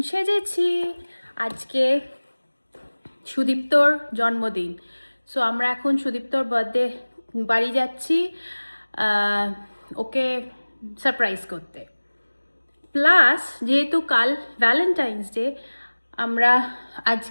সেজেছি, আজকে সুদীপ্তর জন্মদিন। সো আমরা এখন সুদীপ্তর বার্থডে বাড়ি যাচ্ছি ওকে সারপ্রাইজ করতে। প্লাস যেহেতু কাল ভ্যালেন্টাইন্স ডে, আমরা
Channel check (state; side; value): inverted; both; correlation -1.00